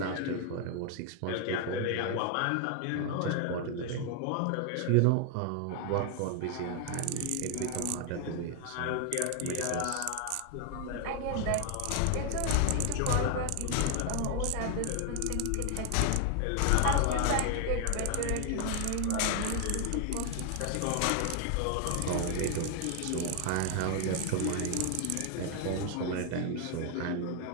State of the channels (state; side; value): different; both; correlation 0.01